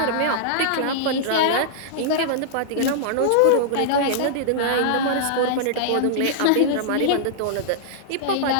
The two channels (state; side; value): different; both; correlation -0.02